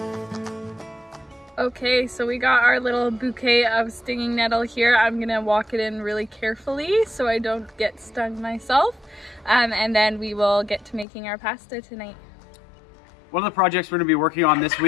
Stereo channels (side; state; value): right; drops out; at 11.1 s